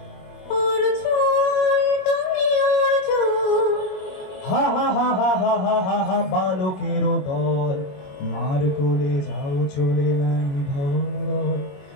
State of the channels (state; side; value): late; right; 21 ms